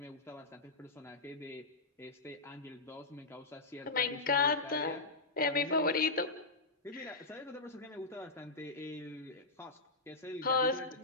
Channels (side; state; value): right; quieter; 3.4 dB